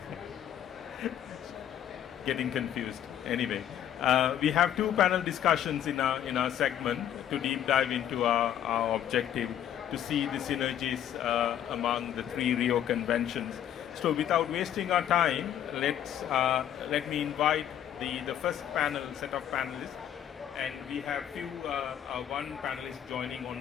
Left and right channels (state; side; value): quieter; right; 10.4 dB